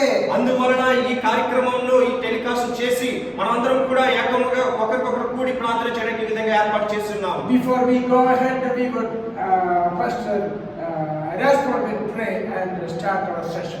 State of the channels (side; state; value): both; identical; correlation 1.00